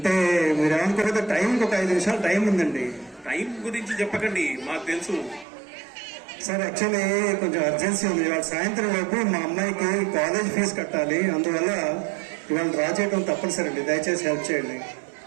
మీరు ఏమనుకోకపోతే టైంకి ఒక 5 నిమిషాలు టైం ఉందండి. టైం గురించి చెప్పకండి, మాకు తెలుసు. సార్ యాక్చువల్లీ కొంచెం అర్జెన్సీ ఉంది. ఇవాళ సాయంత్రం లోపు మా అమ్మాయికి కాలేజ్ ఫీజు కట్టాలి, అందువల్ల ఇవాళ డ్రా చేయడం తప్పనిసరి అండి. దయచేసి హెల్ప్ చేయండి.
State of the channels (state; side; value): drops out; left; at 5.5 s